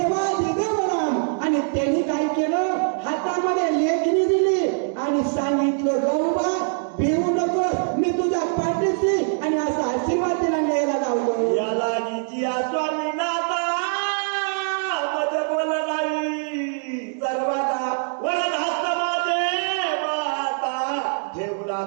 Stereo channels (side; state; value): left; silent; digital silence